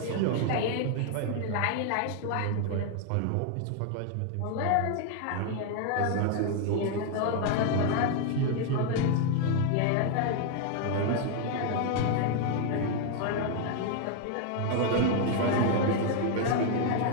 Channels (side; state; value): both; different; correlation 0.00